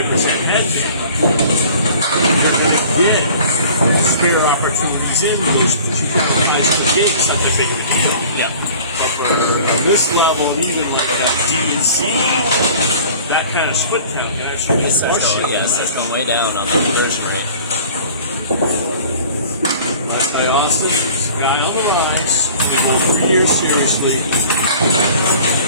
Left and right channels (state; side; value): inverted; both; correlation -0.45